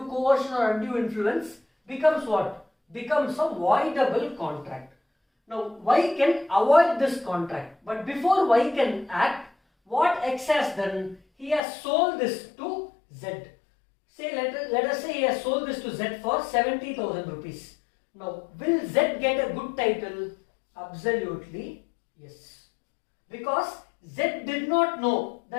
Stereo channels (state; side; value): drops out; right; at 11.6 s